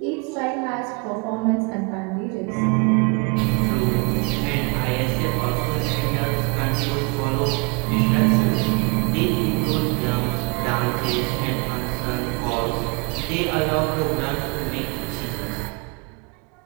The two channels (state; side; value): quieter; left; 30.5 dB